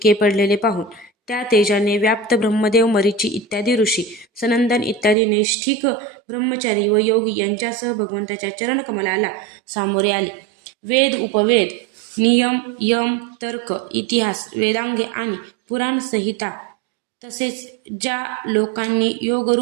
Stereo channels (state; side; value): drops out; left; at 5.2 s